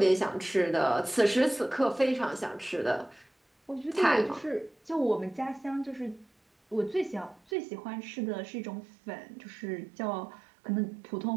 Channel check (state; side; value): drops out; left; at 7.4 s